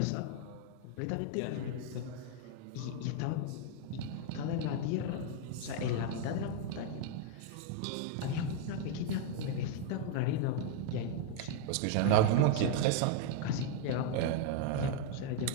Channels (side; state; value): both; different; correlation 0.00